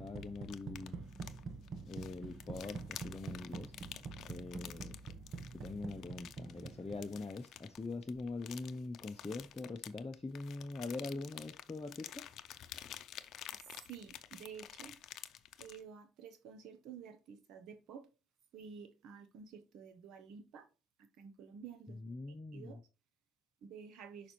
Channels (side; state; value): both; normal; correlation 0.77